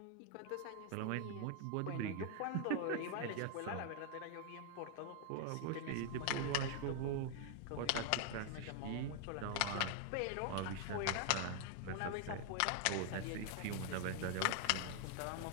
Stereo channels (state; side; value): different; both; correlation 0.00